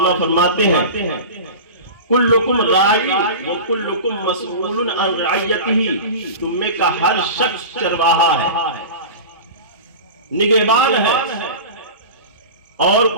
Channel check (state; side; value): inverted; both; correlation -0.30